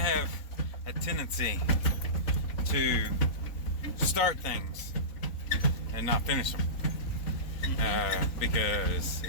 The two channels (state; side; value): late; right; 3.9 ms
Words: a tendency to start things and not finish them because